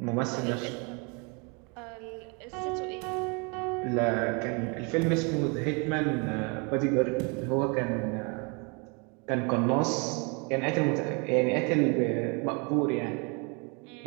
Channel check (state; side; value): quieter; left; 32.7 dB